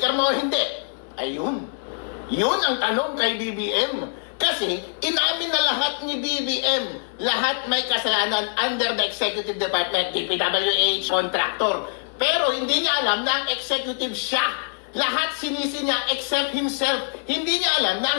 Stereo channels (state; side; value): silent; right; 63 dB below the other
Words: mo o hindi? Ayun. Yun ang tanong kay BBM. Kasi inamin na lahat ni BBM, lahat may kasalanan under the executive department, DPWH, contractor. Pero hindi niya alam na ang executive siya. Lahat sinisi niya except himself. Hindi niya alam na